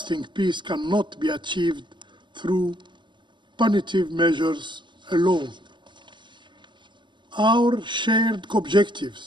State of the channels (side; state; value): left; late; 0.22 ms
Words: peace cannot be achieved through punitive measures alone. Our shared